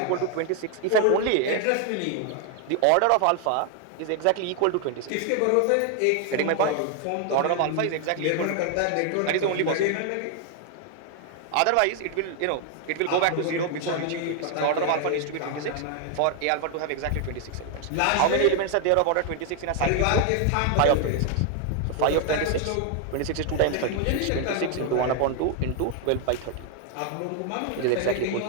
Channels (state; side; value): different; both; correlation 0.00